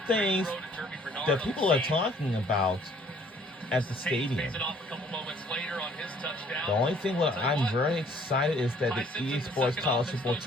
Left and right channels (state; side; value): normal; both; correlation 0.59